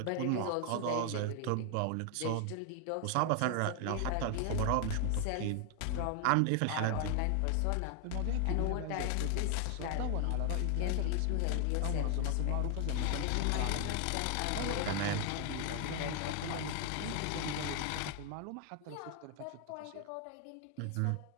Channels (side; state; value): both; different; correlation 0.00